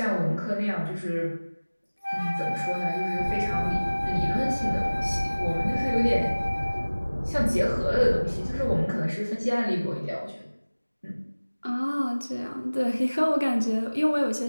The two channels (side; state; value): both; inverted; correlation -1.00